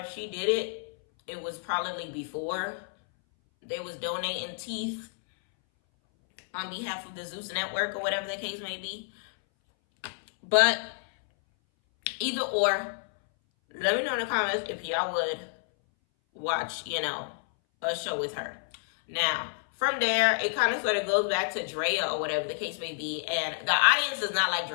she did it, it was probably before they was donating teeth on behalf of the Zeus Network or whatever the case may be. But either or, let me know in the comments if y'all would watch, a show with her. Now, from there, it kind of sort of goes back to Drea or whatever the case may be. And the audience does not like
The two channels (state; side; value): silent; right; 58 dB below the other